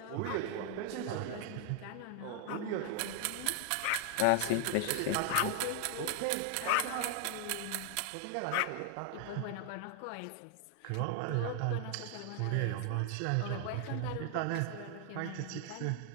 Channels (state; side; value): different; both; correlation 0.00